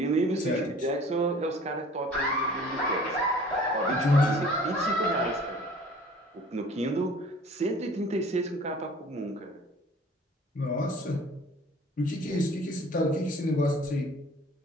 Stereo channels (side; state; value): both; normal; correlation 0.49